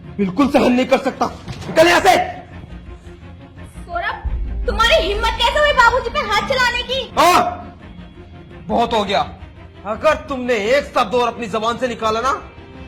बिल्कुल सहन नहीं कर सकता। निकल यहां से। सौरभ, तुम्हारी हिम्मत कैसे हुई बाबूजी पे हाथ चलाने की? हाँ, बहुत हो गया, अगर तुमने एक शब्द और अपनी जबान से निकाला ना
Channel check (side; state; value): both; identical; correlation 1.00